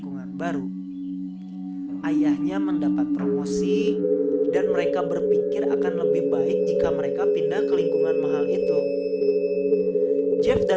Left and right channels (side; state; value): both; identical; correlation 1.00